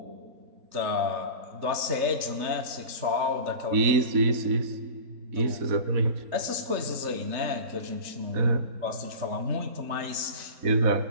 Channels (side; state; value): left; late; 3.4 ms